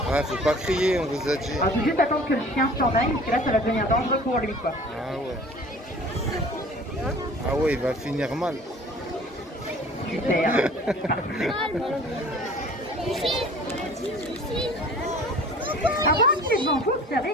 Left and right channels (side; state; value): both; normal; correlation 0.47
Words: Ouais, faut pas crier, on vous a dit. Il faut juste attendre que le chien s'en aille, parce que là, ça va devenir dangereux pour lui, quoi. Ah ouais. Ah ouais, il va finir mal. Super. Avant qu'il devant vous, observez